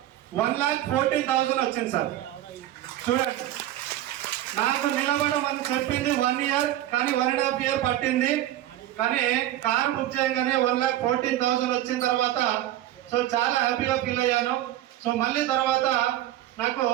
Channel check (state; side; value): quieter; left; 13.7 dB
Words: 1,14,000 వచ్చింది సార్. చూడండి, నాకు నిలబడడం అని చెప్పింది 1 year, కానీ 1.5 year పట్టింది. కానీ కార్ బుక్ చేయగానే 1,14,000 వచ్చిన తర్వాత సో చాలా హ్యాపీగా ఫీల్ అయ్యాను. సో మళ్ళీ తర్వాత నాకు